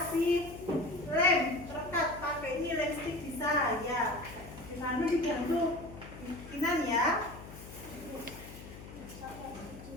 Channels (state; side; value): noise; left; hum, 14 dB below the sound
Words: lem terkat, pakai ini lem stick bisa ya. Dibantu dibantu bikinan ya.